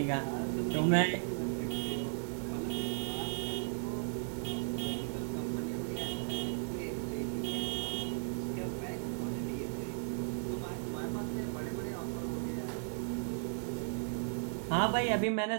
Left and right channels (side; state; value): left; silent; digital silence